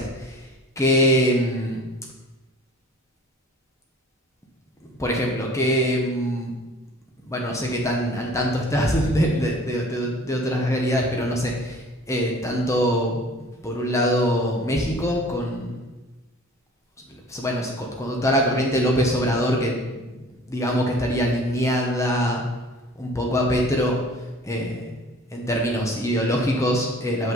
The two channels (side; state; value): both; normal; correlation 0.47